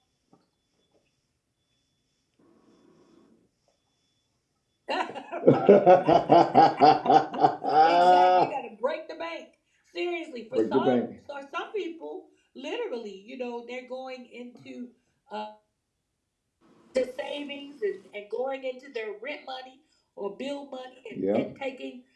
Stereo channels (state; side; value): identical; both; correlation 1.00